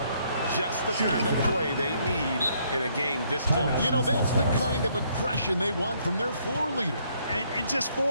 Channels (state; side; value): inverted; both; correlation -0.69